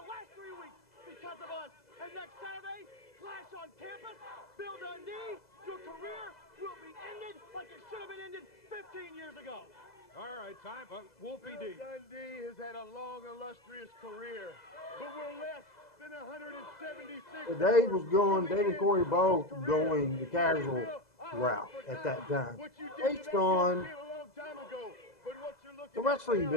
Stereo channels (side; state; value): right; late; 2.0 ms